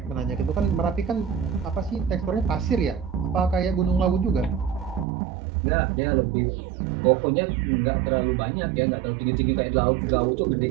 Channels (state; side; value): drops out; left; at 5.1 s